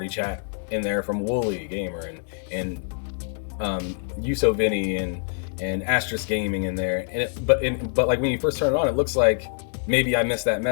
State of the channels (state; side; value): silent; right; digital silence